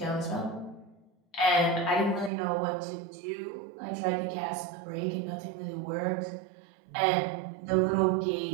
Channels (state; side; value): drops out; left; at 2.3 s